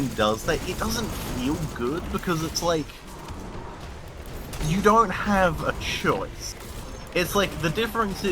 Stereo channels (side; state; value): both; identical; correlation 1.00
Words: does that, it doesn't feel good, because it's like, you don't have a choice. It's like, the difference